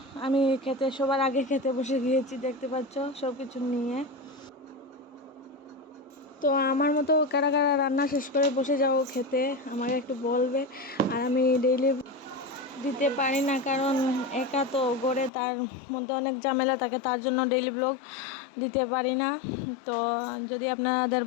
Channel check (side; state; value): right; drops out; at 15.3 s